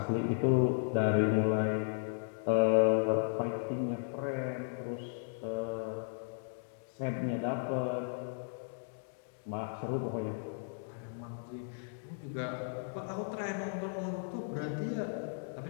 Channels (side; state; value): right; silent; digital silence